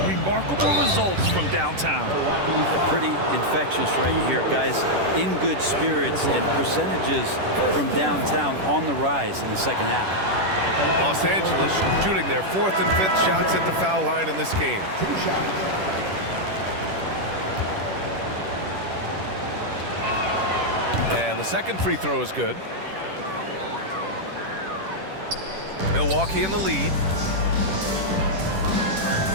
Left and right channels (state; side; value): late; left; 10 ms